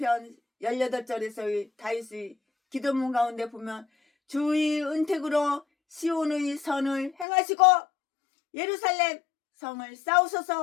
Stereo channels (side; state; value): right; drops out; at 7.2 s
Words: 18절에서의 다윗의 기도문 가운데 보면 주의 은택으로 시온의 선을 행하시고 예루살렘 성을